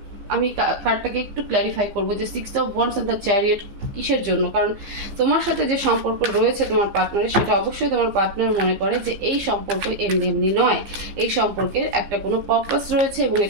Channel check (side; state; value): left; late; 15 ms